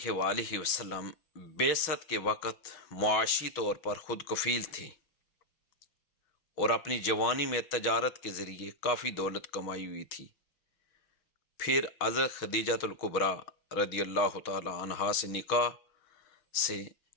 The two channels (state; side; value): late; right; 6.1 ms